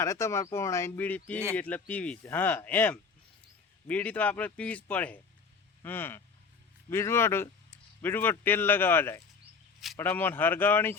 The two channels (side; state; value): right; quieter; 5.2 dB